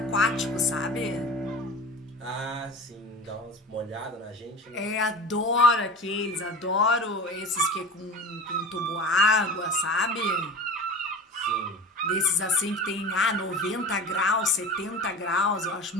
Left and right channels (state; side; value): normal; both; correlation 0.35